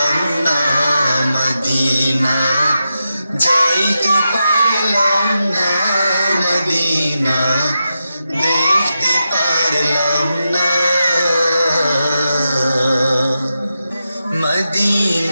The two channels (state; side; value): inverted; both; correlation -0.89